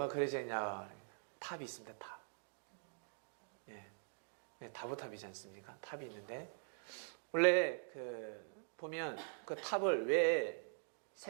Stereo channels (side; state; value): left; silent; digital silence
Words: 그려져 있냐, 탑이 있습니다. 탑. 예, 다보탑이지 않습니까? 탑이 있는데 원래 보면 그 탑을 왜